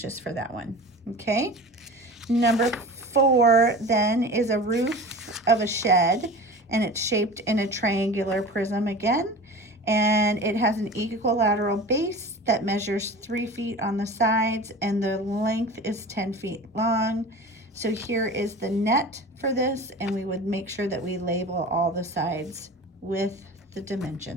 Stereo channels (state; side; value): normal; both; correlation 0.36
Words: for that one. Okay. Number 4 then is a roof of a shed, and it's shaped in a triangular prism again, and it has an equilateral base that measures 3 feet on the sides, and the length is 10 feet long. So here is the net for this, and we would make sure that we label all the sides with the